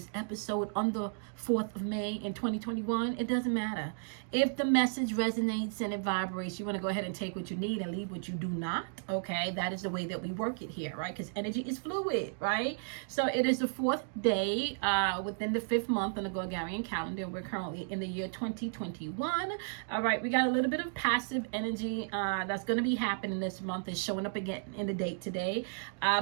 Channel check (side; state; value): left; silent; digital silence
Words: episode on the 4th of May in 2021, it doesn't matter. If the message resonates and it vibrates, you want to go ahead and take what you need and leave what you do not. Okay, that is the way that we work it here, right? Because energy is fluid, right? So it is the 4th day within the 5th month on the Gregorian calendar. We're currently in the year 2021. All right, we got a little bit of passive energy that's going to be happening this month. Is showing up again in the date today.